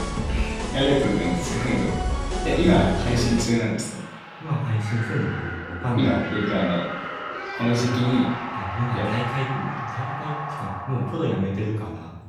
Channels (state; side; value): identical; both; correlation 1.00